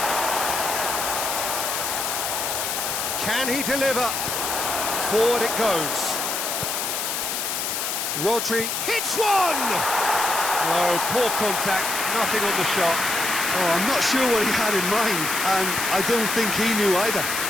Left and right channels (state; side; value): noise; left; hiss, 2 dB below the sound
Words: Can he deliver? Forward it goes. Rodri hits one! No, poor contact, nothing on the shot. Oh, I'm not sure what he had in mind, and I don't think he knew either.